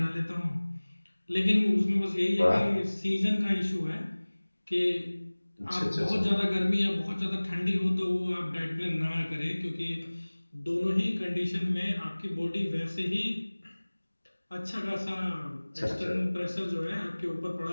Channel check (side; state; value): both; inverted; correlation -1.00